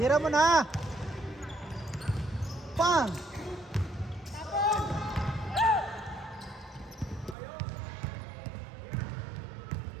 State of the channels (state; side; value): drops out; left; at 7.4 s